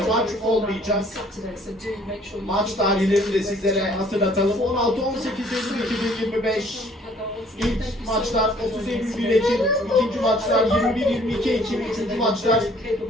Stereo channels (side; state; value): both; normal; correlation 0.58